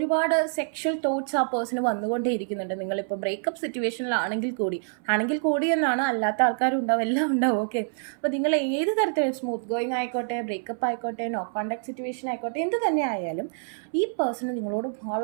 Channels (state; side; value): silent; left; 60 dB below the other